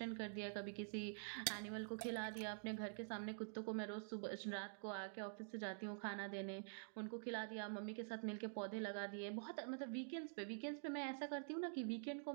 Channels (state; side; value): silent; left; digital silence